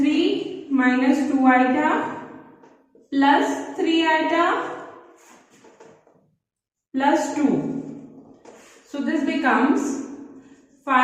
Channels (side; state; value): both; identical; correlation 1.00